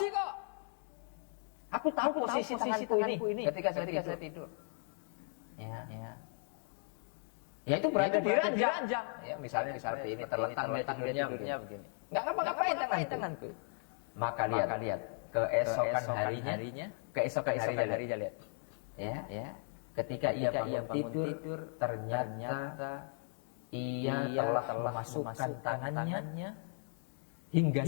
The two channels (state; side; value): silent; right; 53 dB below the other